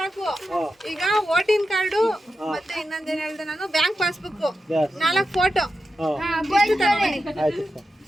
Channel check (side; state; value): both; normal; correlation 0.90